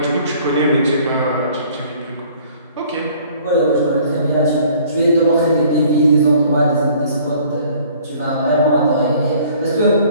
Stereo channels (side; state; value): both; inverted; correlation -0.55